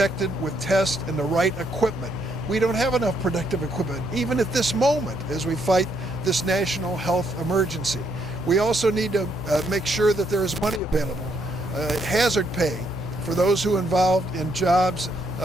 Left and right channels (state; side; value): normal; both; correlation 0.73